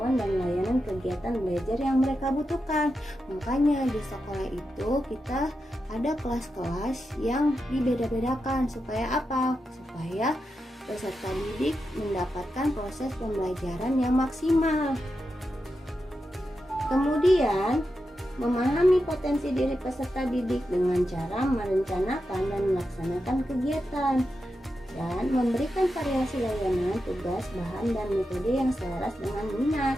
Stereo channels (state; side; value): normal; both; correlation 0.88